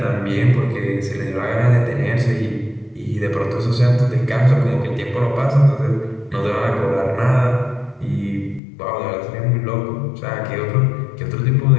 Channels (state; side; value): drops out; right; at 8.6 s